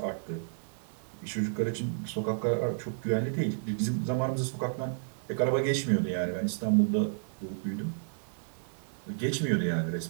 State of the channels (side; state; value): left; silent; 56 dB below the other